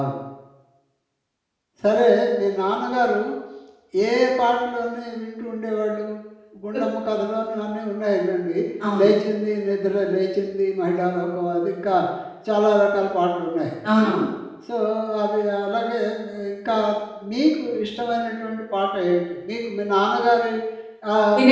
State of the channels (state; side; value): identical; both; correlation 1.00